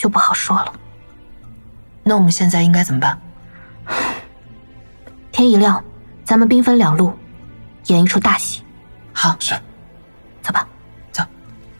不好说了。那我们现在应该怎么办？天一亮，咱们兵分2路，演一出大戏。好，是。走吧。走。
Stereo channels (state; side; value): inverted; both; correlation -1.00